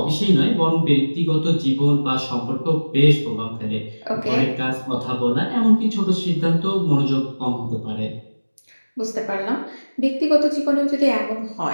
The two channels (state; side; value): inverted; both; correlation -1.00